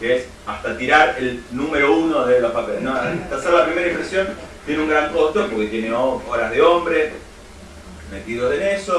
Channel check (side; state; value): both; identical; correlation 1.00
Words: es hasta tirar el número 1 de los papeles, ¿no? Hasta hacer la primera impresión tiene un gran costo porque tiene horas de hombre metidos en